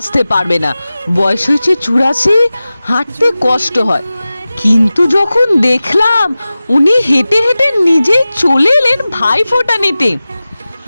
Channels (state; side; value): inverted; both; correlation -0.96